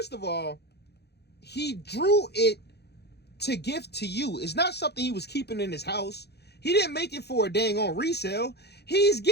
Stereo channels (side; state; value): right; late; 0.48 ms